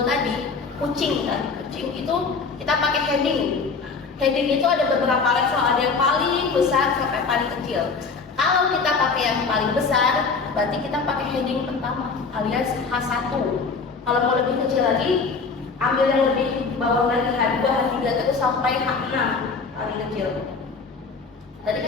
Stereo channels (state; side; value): quieter; right; 4.7 dB